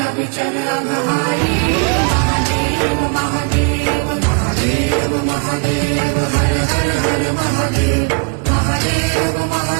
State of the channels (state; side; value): quieter; left; 33.5 dB